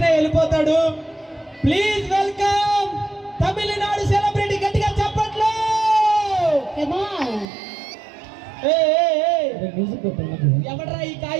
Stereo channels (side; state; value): left; drops out; at 7.5 s